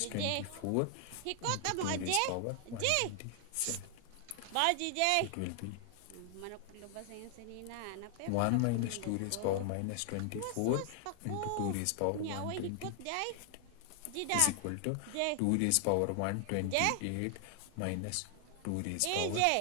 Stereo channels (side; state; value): both; different; correlation 0.00